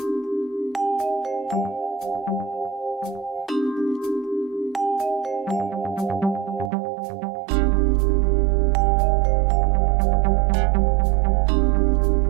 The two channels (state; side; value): drops out; left; at 6.7 s